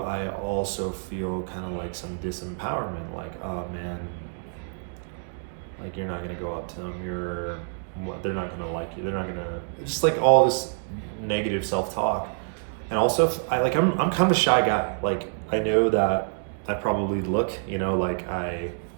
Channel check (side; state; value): left; silent; 60 dB below the other